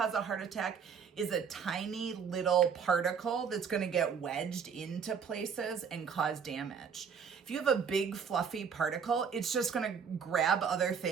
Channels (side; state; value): left; quieter; 6.7 dB